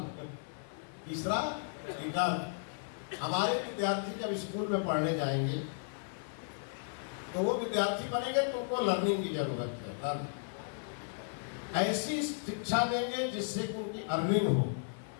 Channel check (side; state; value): right; silent; 55 dB below the other